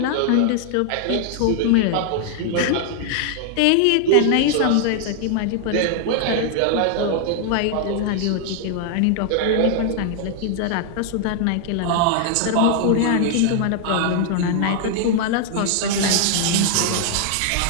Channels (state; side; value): different; both; correlation 0.00